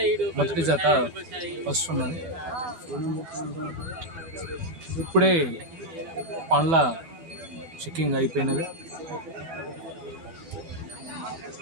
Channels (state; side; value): late; left; 12 ms